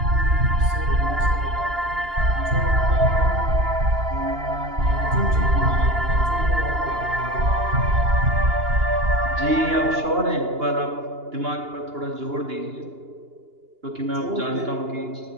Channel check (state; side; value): late; left; 2.8 ms